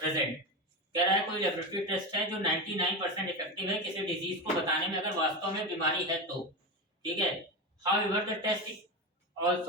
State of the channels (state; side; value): normal; both; correlation 0.19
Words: कह रहा है कोई लेबोरेटरी टेस्ट है जो 99% इफेक्टिव है किसी डिजीज को बताने में अगर वास्तव में बीमारी है तो। ठीक है। However the test